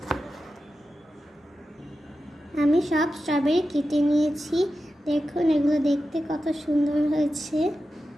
আমি সব স্ট্রবেরি কেটে নিয়েছি। দেখুন এগুলো দেখতে কত সুন্দর হয়েছে।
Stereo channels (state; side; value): normal; both; correlation 0.92